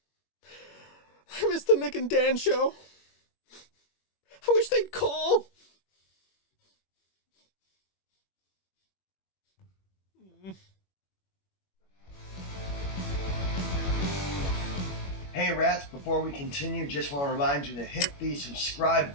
I miss the Nick and Dan show. I wish they'd call. Hey rats, before we continue, just want to remind you to hit the subscribe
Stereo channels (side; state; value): right; late; 21 ms